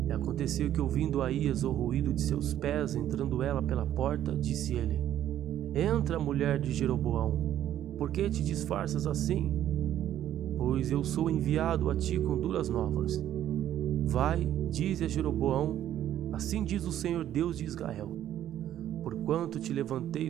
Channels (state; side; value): quieter; left; 11.6 dB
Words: E aconteceu que, ouvindo Aías o ruído de seus pés, entrando ela pela porta, disse ele: entra, mulher de Jeroboão. Por que te disfarças assim? Pois eu sou enviado a ti com duras novas. Vai, dize a Jeroboão: assim diz o Senhor Deus de Israel: porquanto te levantei